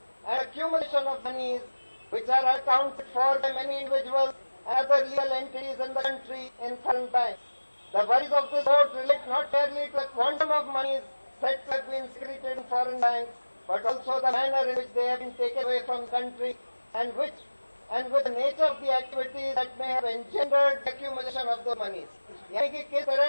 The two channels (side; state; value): both; inverted; correlation -1.00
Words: and accumulation of monies which are accounted for by many individuals and other legal entities in the country in foreign banks. The worries of this court relate not merely to the quantum of monies said to have been secreted in foreign banks, but also the manner in which they have been taken away from the country and with the nature of the activities that may have engendered the accumulation of those monies. यानी कि किस